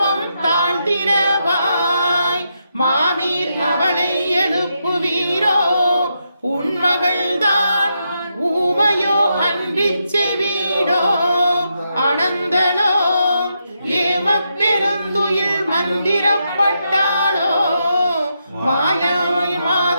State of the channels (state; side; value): inverted; both; correlation -0.83